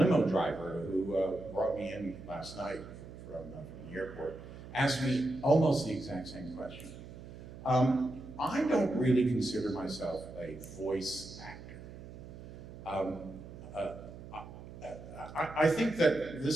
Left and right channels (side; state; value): right; noise; hum, 14 dB below the sound